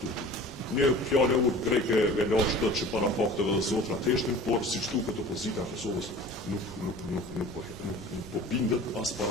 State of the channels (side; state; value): both; normal; correlation 0.42